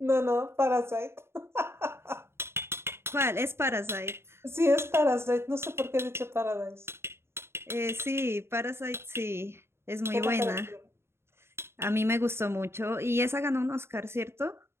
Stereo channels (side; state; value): left; late; 0.12 ms